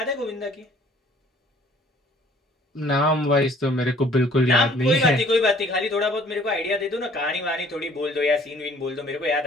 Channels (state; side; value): normal; both; correlation 0.56